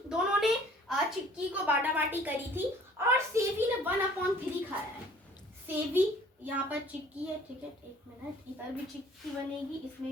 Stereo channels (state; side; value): normal; both; correlation 0.53